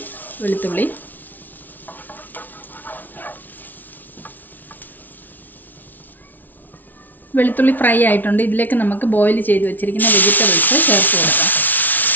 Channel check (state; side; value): late; right; 0.083 ms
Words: വെളുത്തുള്ളി ഫ്രൈ ആയിട്ടുണ്ട്. ഇതിലേക്ക് നമുക്ക് ബോയിൽ ചെയ്ത് വെച്ചിരിക്കുന്ന വെജിറ്റബിൾസ് ചേർത്ത് കൊടുക്കാം.